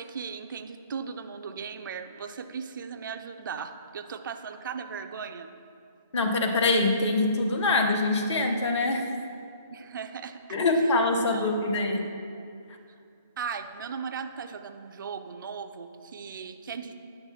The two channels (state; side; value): inverted; both; correlation -0.48